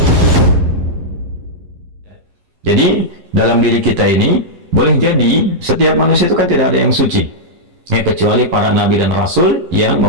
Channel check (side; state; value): left; late; 11 ms